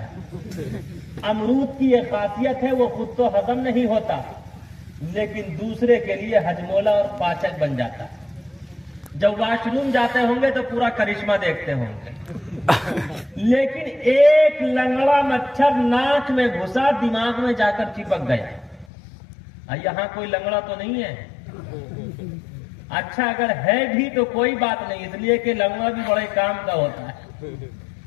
अमरूद की एक खासियत है, वो खुद तो हजम नहीं होता, लेकिन दूसरे के लिए हजमोला और पाचक बन जाता। जब वॉशरूम जाते होंगे तो पूरा करिश्मा देखते होंगे। लेकिन एक लंगड़ा मच्छर नाक में घुसा, दिमाग में जाकर चिपक गया। यहाँ कोई लंगड़ा तो नहीं है? अच्छा, अगर है भी तो कोई बात नहीं, इसलिए कि लंगड़ा भी बड़े काम का होता है।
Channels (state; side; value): drops out; right; at 18.9 s